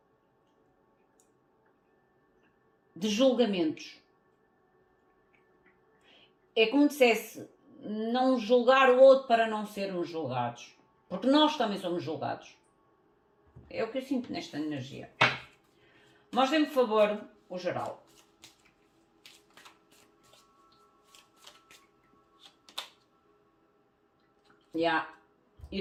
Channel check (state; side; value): identical; both; correlation 1.00